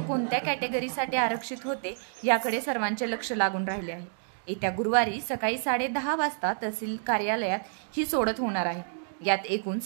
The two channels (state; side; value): silent; left; digital silence